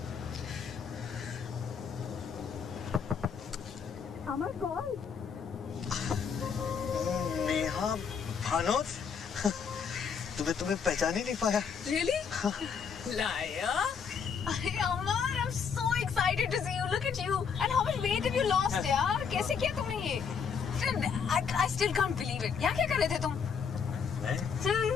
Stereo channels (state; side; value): quieter; right; 6.4 dB